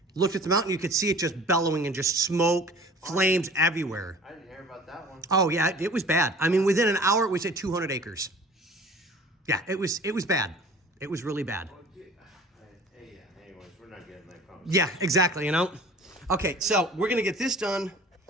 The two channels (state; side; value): normal; both; correlation 0.45